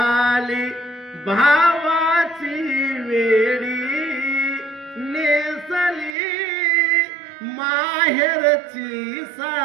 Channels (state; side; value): drops out; left; at 6.2 s